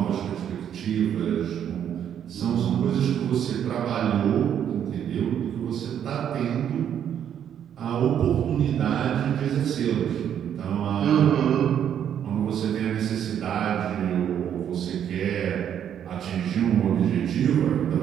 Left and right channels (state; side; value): quieter; left; 9.3 dB